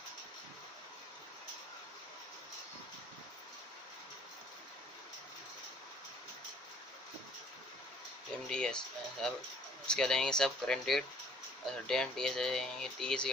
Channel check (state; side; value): normal; both; correlation 0.58